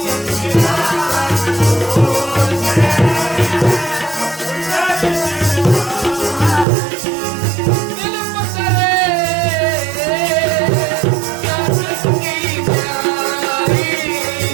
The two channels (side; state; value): left; drops out; at 6.7 s